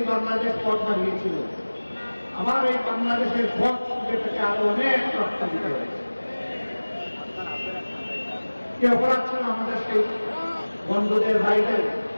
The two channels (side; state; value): both; inverted; correlation -1.00